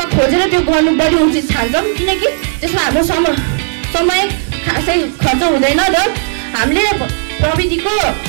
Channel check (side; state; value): left; silent; digital silence